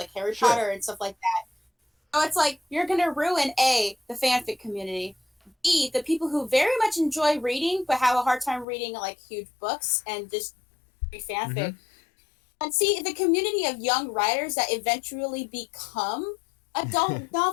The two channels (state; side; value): drops out; right; at 8.7 s